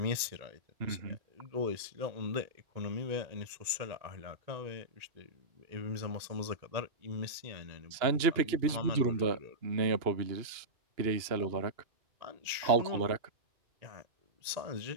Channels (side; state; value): left; late; 1.9 ms